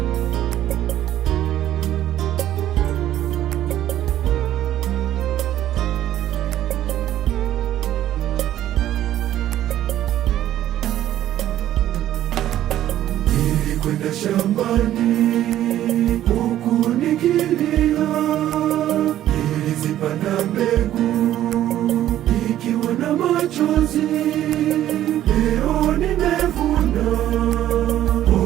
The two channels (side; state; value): left; quieter; 12.5 dB